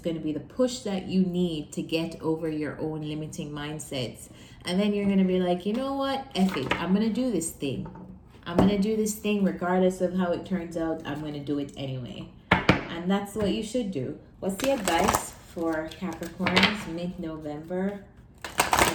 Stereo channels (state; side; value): identical; both; correlation 1.00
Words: to be the push that you need to get over your own limiting mindsets. And then you're going to be like, you know what, F it, I'm going to do this thing. I'm going to do this thing regardless of how it turns out. I'm going to do it anyway. And that's what you should do. What's the advice for Capricorns mid-November?